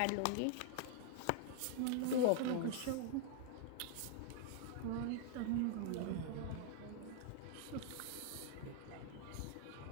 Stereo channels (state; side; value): different; both; correlation -0.01